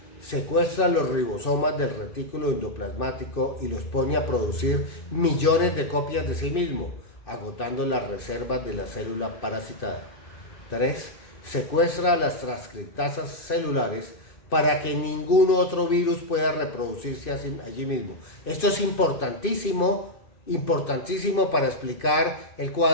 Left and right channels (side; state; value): right; late; 2.5 ms